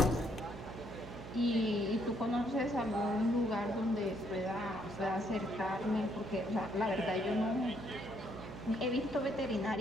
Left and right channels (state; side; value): noise; right; hum, 11 dB below the sound